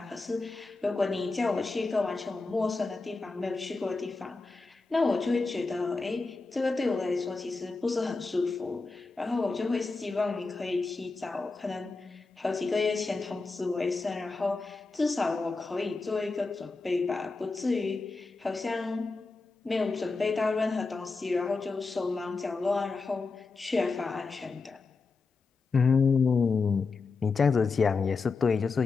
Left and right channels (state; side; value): quieter; right; 4.0 dB